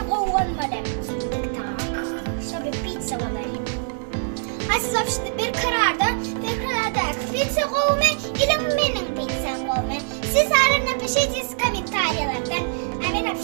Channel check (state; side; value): silent; left; digital silence